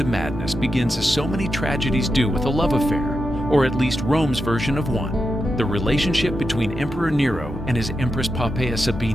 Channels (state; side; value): normal; both; correlation 0.88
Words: madness begins as so many tragedies do, with a love affair, or at least Rome's version of one. The relationship between Emperor Nero and his Empress Poea